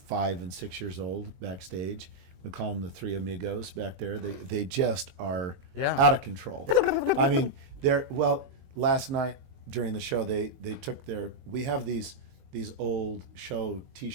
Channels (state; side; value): late; left; 22 ms